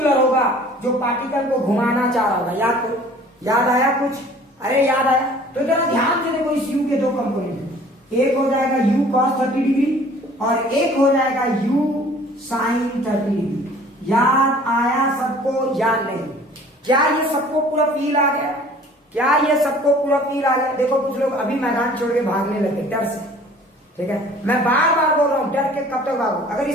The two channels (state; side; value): normal; both; correlation 0.50